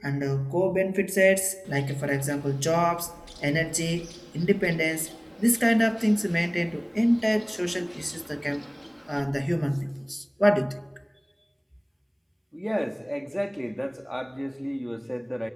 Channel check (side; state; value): both; identical; correlation 1.00